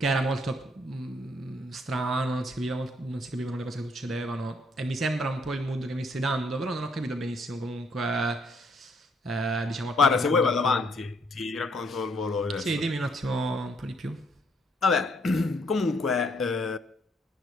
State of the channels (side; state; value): both; normal; correlation 0.69